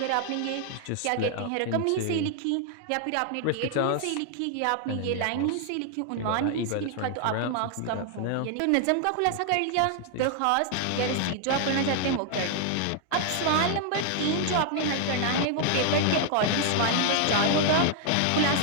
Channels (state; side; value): different; both; correlation 0.00